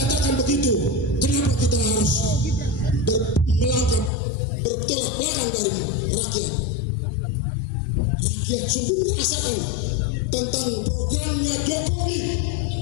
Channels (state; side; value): drops out; right; at 4.1 s